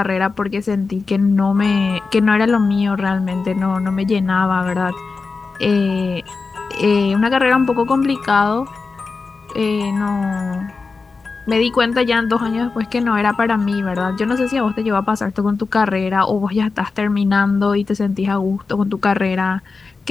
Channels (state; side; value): quieter; right; 4.3 dB